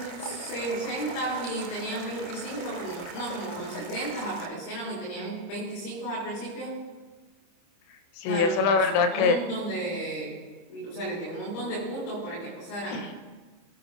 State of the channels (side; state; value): right; late; 30 ms